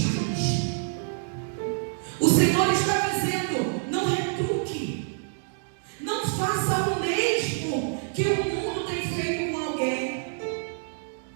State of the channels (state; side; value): silent; left; digital silence